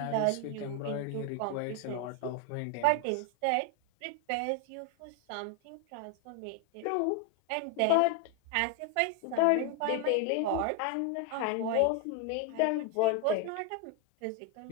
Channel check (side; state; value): both; different; correlation 0.01